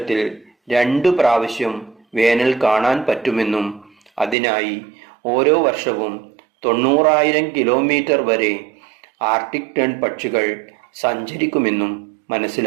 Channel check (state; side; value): drops out; left; at 4.4 s